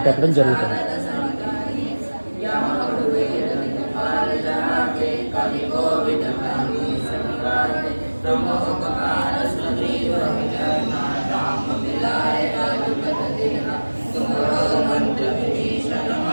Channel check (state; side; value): inverted; both; correlation -1.00